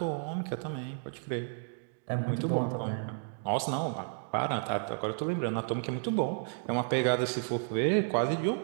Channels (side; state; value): left; silent; digital silence